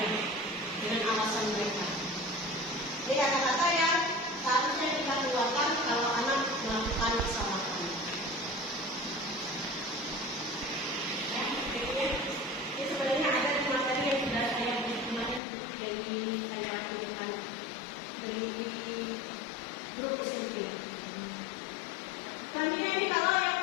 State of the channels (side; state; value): right; drops out; at 15.4 s